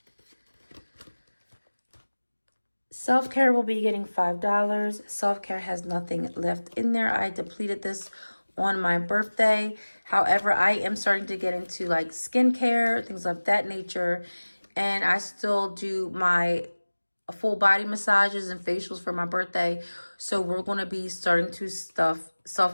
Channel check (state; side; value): inverted; both; correlation -1.00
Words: Self-care will be getting $5. Self-care has nothing left in there. I depleted this on my birthday. However, I am starting to get into like skincare, things of that nature. And I still do my full body massages and facials for my birthday. So we're going to be starting to stuff